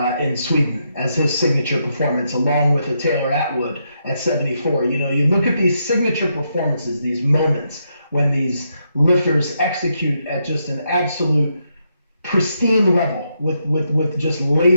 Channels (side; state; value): both; inverted; correlation -0.80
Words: in Sweden as his signature performance, along with a Taylor Atwood at 74. You look at these signature performances, these moments when these lifters execute at just an absolute pristine level with just